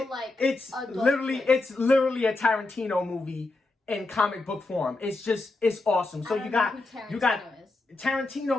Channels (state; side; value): quieter; right; 3.2 dB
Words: it's literally twist. it's literally a Tarantino movie in comic book form. It's awesome. So you got